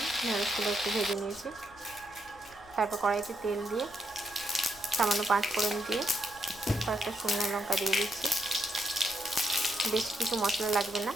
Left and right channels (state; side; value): noise; left; rumble, 24 dB below the sound